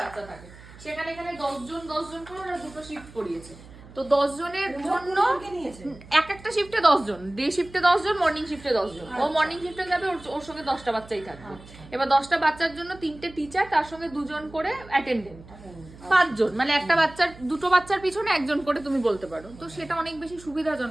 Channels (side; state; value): right; noise; hum, 20 dB below the sound